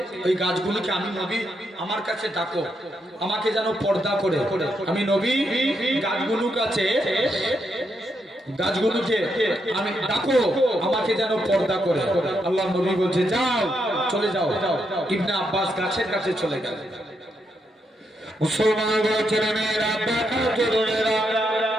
ওই গাছগুলোকে আমি নবী আমার কাছে ডাকো, আমাকে যেন পর্দা করে। আমি নবী গাছগুলোর কাছে, গাছগুলোকে আমি ডাকো, আমাকে যেন পর্দা করে। আল্লাহ নবী বলছে যাও, চলে যাও। ইবনে আব্বাস গাছের কাছে চলে গেল। মুসলমান ছেলেমেয়েরা, তরুণেরা,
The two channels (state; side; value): normal; both; correlation 0.80